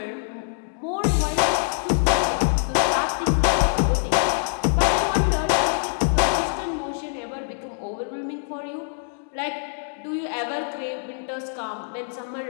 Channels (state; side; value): silent; right; digital silence